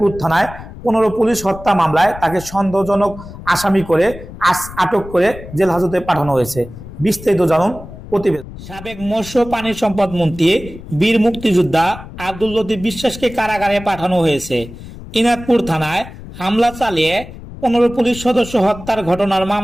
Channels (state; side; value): noise; left; rumble, 14 dB below the sound